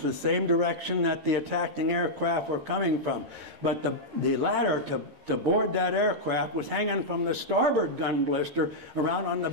was the same direction that the attacking aircraft were coming from. But the ladder to board that aircraft was hanging from the starboard gun blister around on the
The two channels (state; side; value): late; left; 13 ms